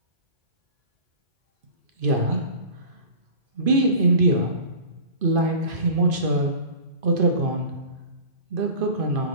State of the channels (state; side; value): late; left; 2.5 ms